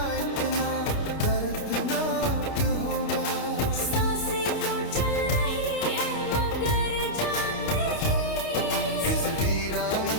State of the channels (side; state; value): right; late; 29 ms